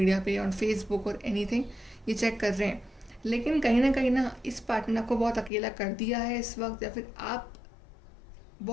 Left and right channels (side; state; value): right; drops out; at 5.5 s